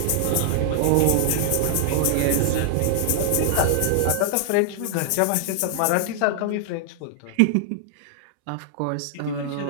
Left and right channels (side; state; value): both; different; correlation -0.01